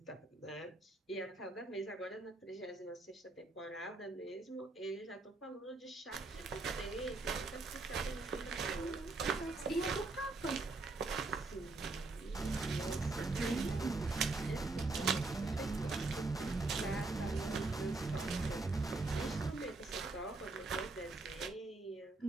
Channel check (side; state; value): left; quieter; 3.4 dB